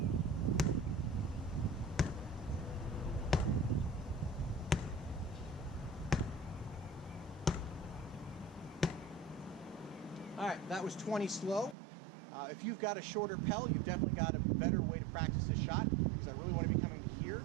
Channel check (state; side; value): drops out; left; at 11.8 s